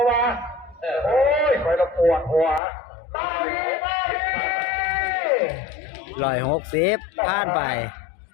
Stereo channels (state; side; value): drops out; right; at 2.6 s